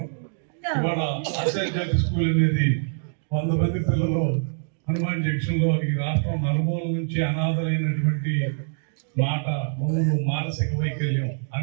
ఇవాళ ఆచార్య స్కూల్ అనేది 100 మంది పిల్లలు హనుమాన్ జంక్షన్ లో ఈ రాష్ట్రం నలుమూల నుంచి అనాథలైనటువంటి మాట, మూడు మానసిక వైకల్యం,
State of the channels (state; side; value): silent; left; digital silence